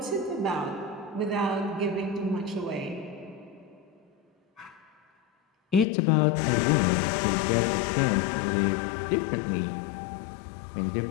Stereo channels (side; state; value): right; drops out; at 5.9 s